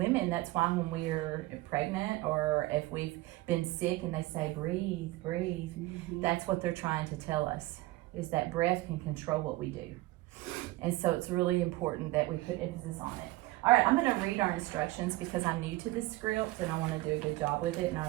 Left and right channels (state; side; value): quieter; left; 19.2 dB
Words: that's why when we're pregnant or if we've been sick and they say, breathe, breathe, that's what they're trying to tell us, is that breath can control what we do. And so it's really important that we put emphasis on it. All right, I'm going to read our instructions because I'm new to this script and I want to do a good job with it and I